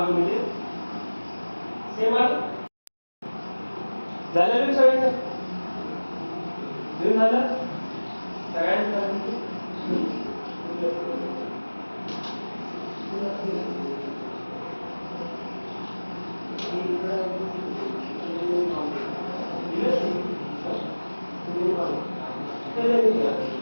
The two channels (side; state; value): both; inverted; correlation -1.00